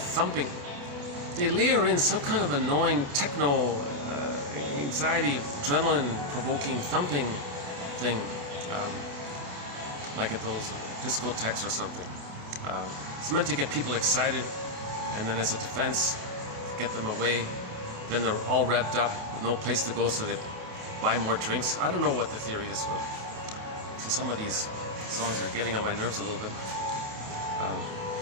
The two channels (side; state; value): left; late; 28 ms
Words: They layer in some kind of annoying techno, anxiety, adrenaline-provoking thumping thing, like at those discotheques or something. It's meant to get people excited, and then as a defense, get them away. Then they're all revved up with no place to go, so they buy more drinks. I don't know what the theory is, but so some of these songs are getting on my nerves a little bit.